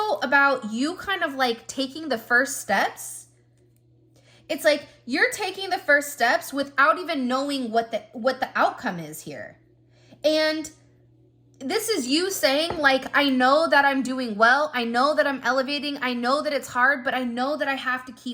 about you kind of like taking the first steps. It's like you're taking the first steps without even knowing what the outcome is here. And this is you saying like, I know that I'm doing well. I know that I'm elevating. I know that it's hard, but I know that I have to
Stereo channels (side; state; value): both; identical; correlation 1.00